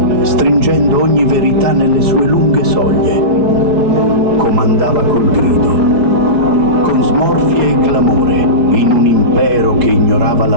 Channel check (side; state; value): left; late; 4.4 ms